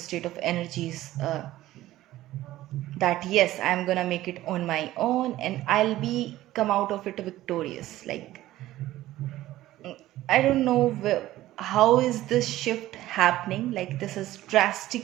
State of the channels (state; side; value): quieter; left; 15.3 dB